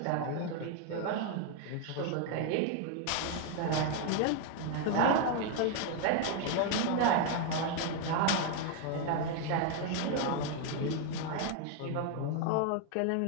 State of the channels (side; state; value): both; different; correlation 0.00